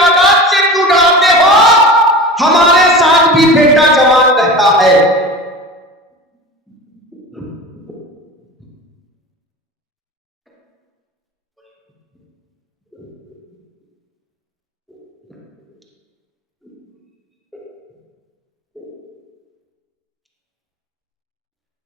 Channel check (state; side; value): normal; both; correlation 0.33